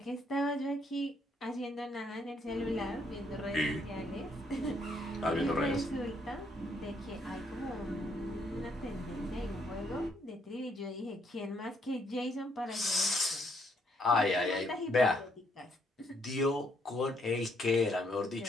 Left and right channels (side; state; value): both; normal; correlation 0.71